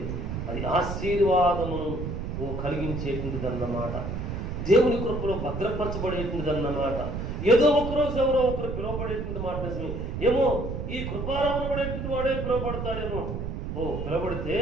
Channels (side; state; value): right; noise; rumble, 4 dB below the sound